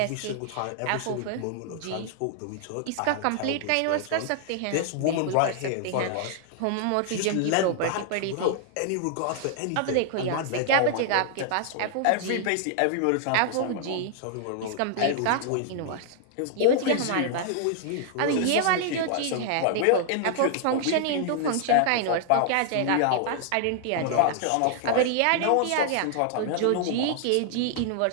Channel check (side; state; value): both; different; correlation 0.00